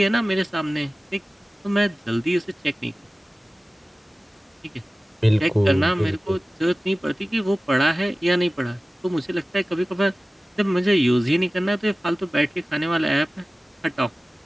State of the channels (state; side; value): normal; both; correlation 0.97